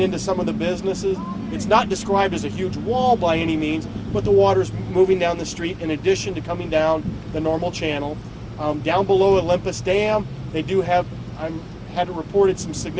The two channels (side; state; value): both; identical; correlation 1.00